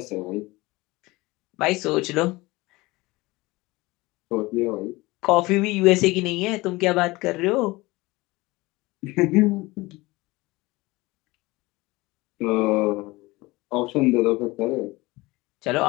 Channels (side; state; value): right; quieter; 21.5 dB